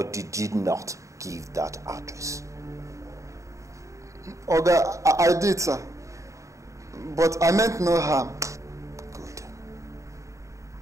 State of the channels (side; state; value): left; late; 0.15 ms